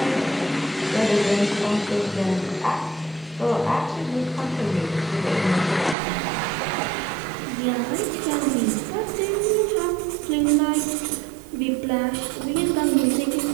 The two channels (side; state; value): left; drops out; at 6.0 s